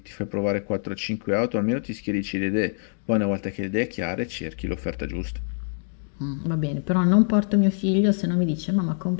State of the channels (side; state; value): right; silent; digital silence